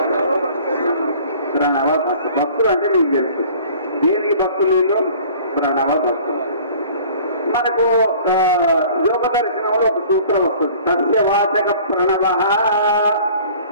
ప్రణవ భక్తులు. భక్తులు అంటే మీకు తెలుసు, దేనికి భక్తులు? ప్రణవ భక్తులు. మనకు యోగ దర్శనంలో ఒక సూత్రం వస్తుంది, సస్యవాచక ప్రణవ.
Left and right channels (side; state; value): both; inverted; correlation -0.48